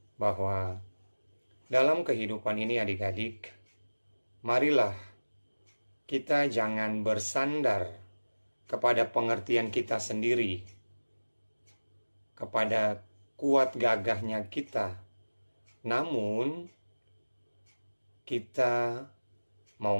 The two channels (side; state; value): both; inverted; correlation -1.00